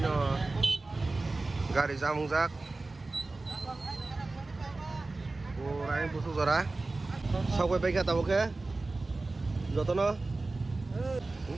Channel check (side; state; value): left; quieter; 3.3 dB